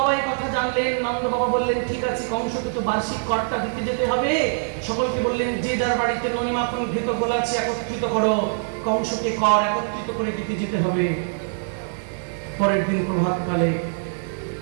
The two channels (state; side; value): silent; left; digital silence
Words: এই কথা জানলেন। নন্দ বাবা বললেন, ঠিক আছে, কংসকে তো বার্ষিক করটা দিতে যেতে হবে। সকলকে বললেন, যে যার বাড়িতে ননি মাখন ঘৃত গোল আছে একত্রিত করো, কংসকে কর একত্রিত করে দিতে যেতে হবে। পরের দিন প্রভাতকালে